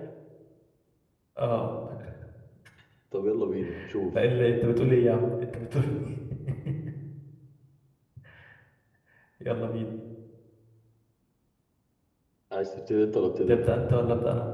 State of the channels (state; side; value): identical; both; correlation 1.00